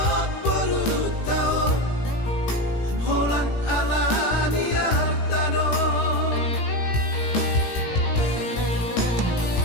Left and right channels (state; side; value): late; right; 17 ms